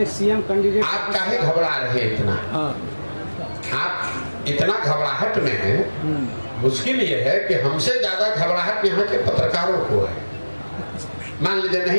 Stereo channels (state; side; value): inverted; both; correlation -1.00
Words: सीएम कैंडिडेट। आप काहे घबरा रहे इतना? आप इतना घबराहट में हैं, मुश्किल ये है कि हमसे ज्यादा घबराहट यहाँ के पत्रकारों को है। मान लीजिए